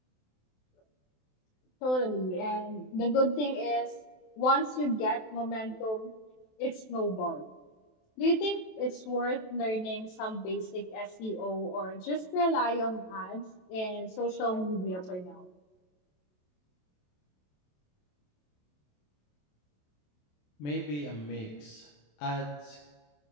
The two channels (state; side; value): late; right; 27 ms